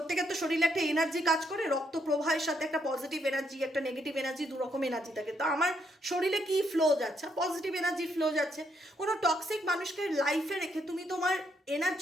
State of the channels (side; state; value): both; normal; correlation 0.75